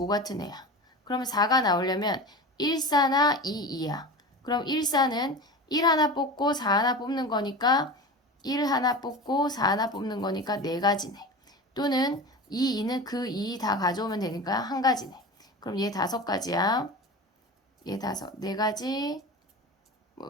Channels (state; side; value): normal; both; correlation 0.31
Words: 같은 애야. 그러면 4가 나오려면 1, 4나 2, 2야. 그럼 1, 4는 1 하나 뽑고 4 하나 뽑는 거니까 1 하나 뽑고 4 하나 뽑는 거니까 4가지네. 또는 2, 2는 그 2 다 가져오면 되니까 1가지네. 그럼 얘 5가지야. 얘 4가지,